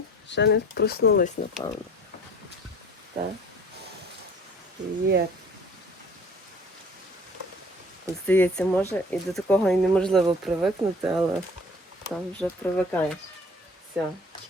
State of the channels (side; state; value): both; normal; correlation 0.48